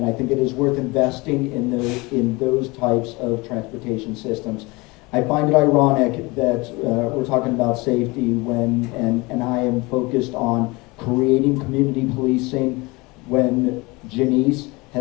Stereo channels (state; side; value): quieter; right; 24.4 dB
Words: I think it is worth investing in those types of transportation systems. I find it ironic that we're talking about safety and I am focused on creating community policing when Janice